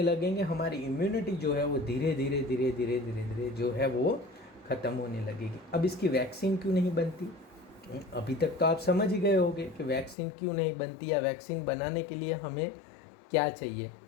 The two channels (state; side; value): drops out; right; at 10.2 s